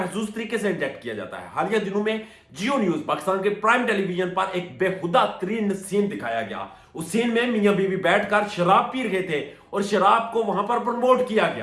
तरीके से इंजेक्ट किया जाता है। हालिया दिनों में जियो न्यूज पाकिस्तान के प्राइम टेलीविजन पर एक बेहुदा तरीन सीन दिखाया गया। उस सीन में मियां बीवी बैठकर शराब पी रहे थे और शराब को वहां पर प्रमोट किया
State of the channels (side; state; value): both; identical; correlation 1.00